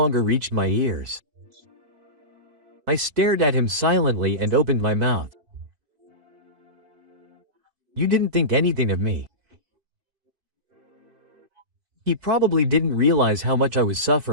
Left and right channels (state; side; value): late; left; 4.6 ms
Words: reached my ears. I stared at him silently and opened my mouth. "You didn't think anything of me." He probably didn't realize how much I was